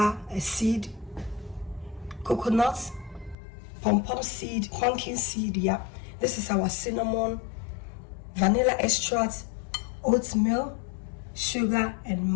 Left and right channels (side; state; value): right; drops out; at 3.4 s